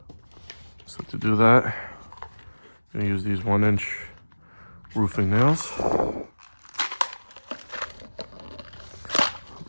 So to do that, I'm going to use these 1-inch roofing nails.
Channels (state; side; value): inverted; both; correlation -1.00